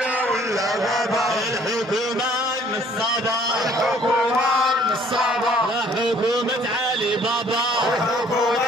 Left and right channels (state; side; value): normal; both; correlation 0.58